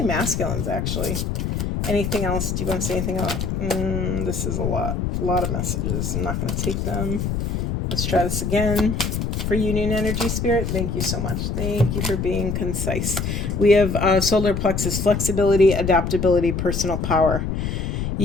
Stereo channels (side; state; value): left; noise; rumble, 1 dB below the sound